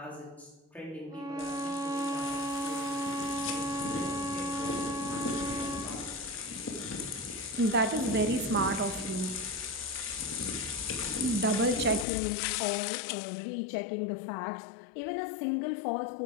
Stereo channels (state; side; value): drops out; right; at 12.1 s